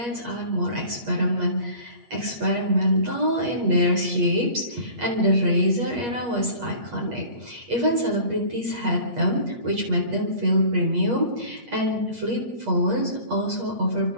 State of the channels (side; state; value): left; late; 8.4 ms